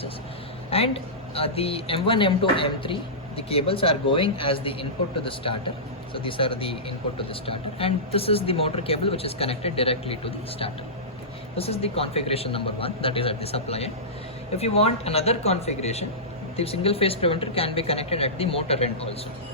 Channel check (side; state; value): both; normal; correlation -0.17